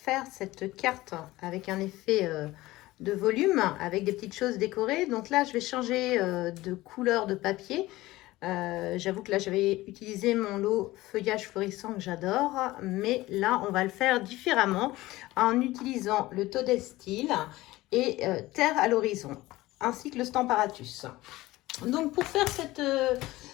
cette carte avec un effet de volume, avec des petites choses décorées. Donc là je vais changer de couleur de papier. J'avoue que là j'avais utilisé mon lot feuillage florissant que j'adore, mais là on va le faire différemment en utilisant le Toadstool et Terre à l'horizon, ainsi que le Stamparatus. Donc pour faire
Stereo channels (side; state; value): right; quieter; 18.1 dB